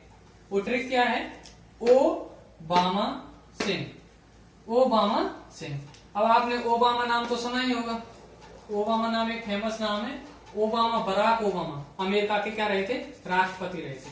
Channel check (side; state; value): both; identical; correlation 1.00